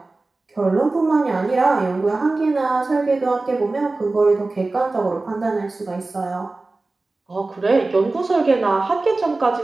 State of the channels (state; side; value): quieter; left; 3.3 dB